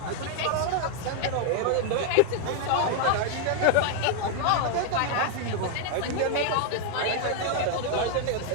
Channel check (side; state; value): both; different; correlation 0.00